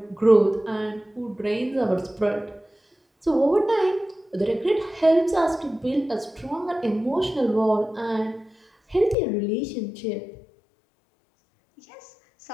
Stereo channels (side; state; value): right; drops out; at 9.2 s